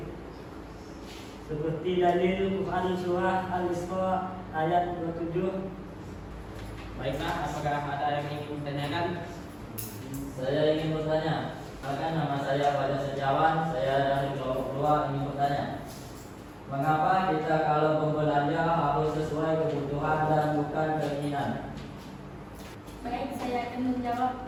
Seperti dalil Quran surah Al-Isra ayat 27. Baiklah, apakah ada yang ingin ditanyakan? Saya ingin bertanya. Bahkan nama saya pada sejawat, saya dari kelompok 2 ingin bertanya. Mengapa kita kalau berbelanja harus sesuai kebutuhan dan bukan keinginan? Baik, saya akan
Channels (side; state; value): both; identical; correlation 1.00